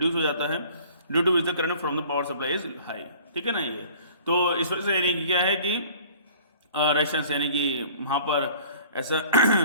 हो जाता है, due to which the current from the power supply is high. ठीक है ना, ये तो इस वजह से यानी कि क्या है कि रेजिस्टेंस यानी कि वहाँ पर ऐसा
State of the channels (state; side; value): inverted; both; correlation -0.49